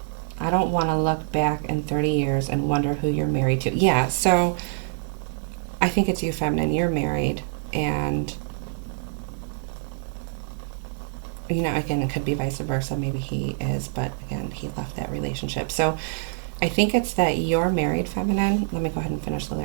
I don't want to look back in 30 years and wonder who you're married to. Yeah, so I think it's you, feminine. You're married, and you know, again, it could be vice versa. Maybe he is, but again, he left that relationship. So I think it's that you're married, feminine. Let me go ahead and finish the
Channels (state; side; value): silent; left; digital silence